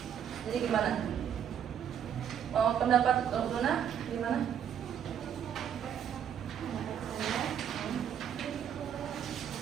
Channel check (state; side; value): quieter; left; 8.9 dB